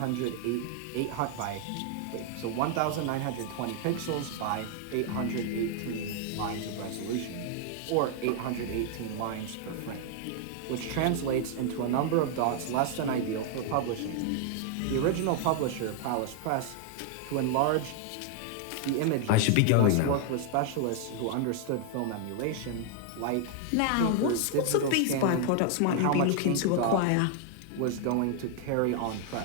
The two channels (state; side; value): different; both; correlation 0.00